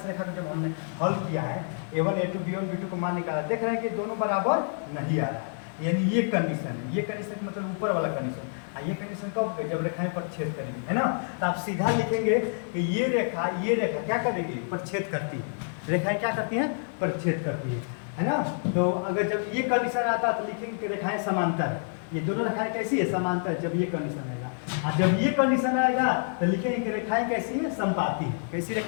को जब हमने हल किया है, A1 A2 B1 B2 को मान निकाला, देख रहे हैं कि दोनों बराबर नहीं आ रहा है, यानी ये कंडीशन है। ये कंडीशन मतलब ऊपर वाला कंडीशन, ये कंडीशन कब? जब रेखाएं प्रतिच्छेद करेगी, है ना। तो आप सीधा लिखेंगे कि ये रेखा क्या करेगी? प्रतिच्छेद करती है। रेखाएं क्या करती हैं? प्रतिच्छेद करती है ना। तो अगर जब ये कंडीशन आता तो लिखेंगे कि रेखाएं समांतर है। ये दोनों रेखाएं कैसी है? समांतर है, जब ये कंडीशन आएगा। और जब ये कंडीशन आएगा तो लिखेंगे कि रेखाएं कैसी है? संपाती है। कैसी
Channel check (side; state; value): right; silent; digital silence